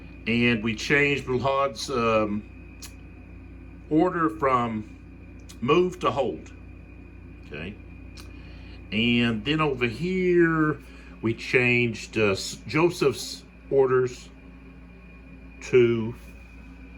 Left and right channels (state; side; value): identical; both; correlation 1.00